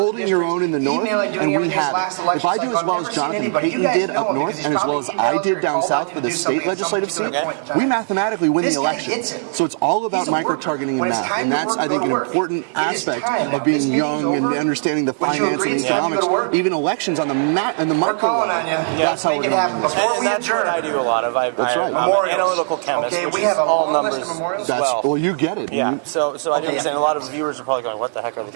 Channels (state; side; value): silent; left; digital silence